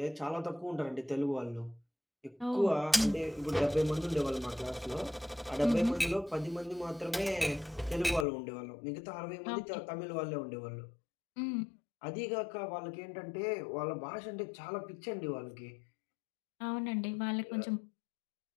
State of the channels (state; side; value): drops out; right; at 8.2 s